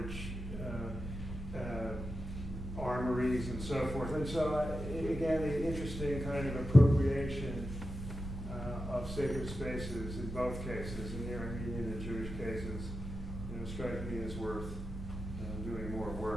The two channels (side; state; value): both; normal; correlation 0.90